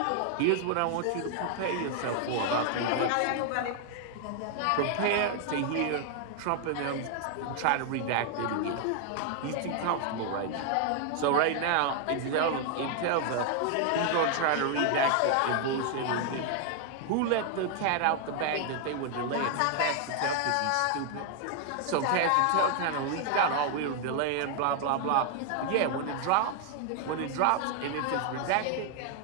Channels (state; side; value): different; both; correlation 0.00